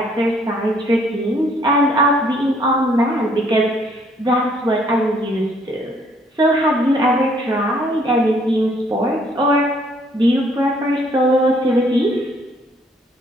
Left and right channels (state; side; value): normal; both; correlation 0.64